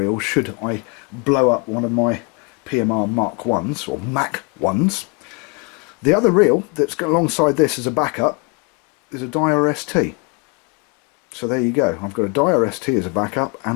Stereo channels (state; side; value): quieter; right; 32.2 dB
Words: should I blow up one of my PMR Mark 1s or Mac 1s, the other reel that's got alongside this as a backup is a Dyer ST. So there you go. I've got a Dyer ST as a backup,